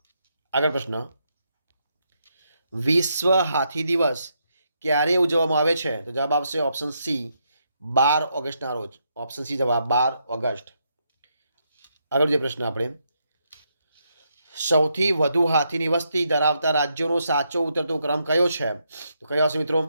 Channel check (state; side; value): inverted; both; correlation -0.79